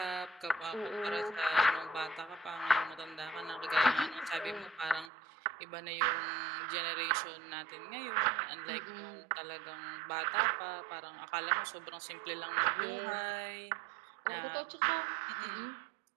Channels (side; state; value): left; drops out; at 5.1 s